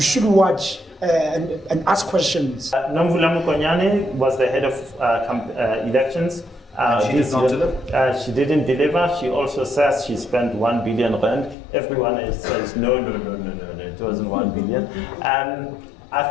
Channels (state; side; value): drops out; right; at 11.6 s